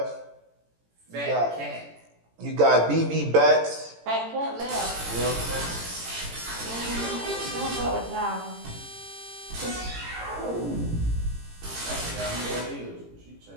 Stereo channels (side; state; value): left; late; 18 ms